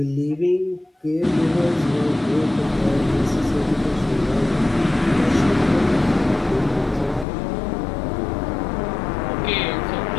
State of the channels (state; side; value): drops out; right; at 7.2 s